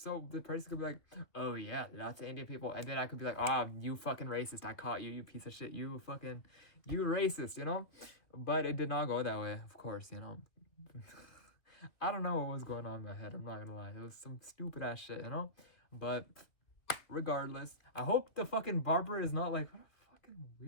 the person could be like, oh yeah, lots of Indian people. And then I could be like, oh, you fucking racist. I caught you, you piece of shit. You racist, you know? But it did not go that way, of course, you know? I don't know what was going on in my head. I'm not gonna lie. It was some stupid ass shit, you know? But regardless, I hope the fucking barber is not like, what a fucking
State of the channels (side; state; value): right; late; 2.6 ms